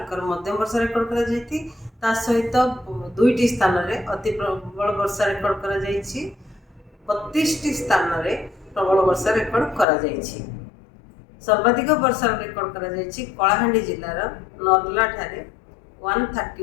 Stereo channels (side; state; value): right; drops out; at 9.9 s